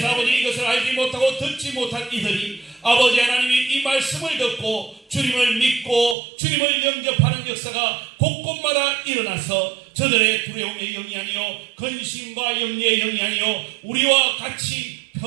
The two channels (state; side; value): drops out; left; at 6.2 s